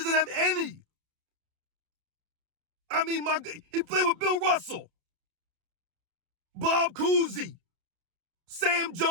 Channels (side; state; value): left; late; 30 ms